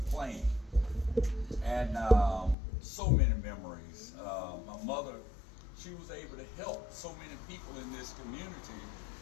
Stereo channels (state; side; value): drops out; right; at 2.6 s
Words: playing. And so many memories. My mother, she was able to help so many people in this community